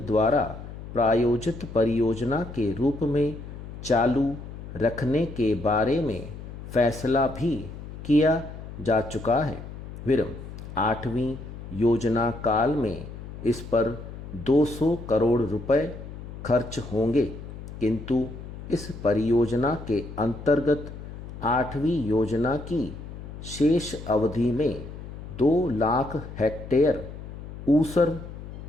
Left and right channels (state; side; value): noise; left; hum, 12 dB below the sound